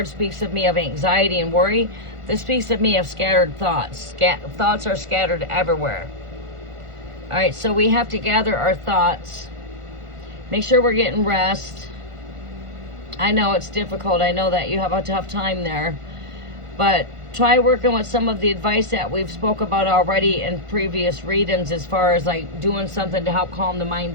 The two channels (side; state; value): left; late; 1.5 ms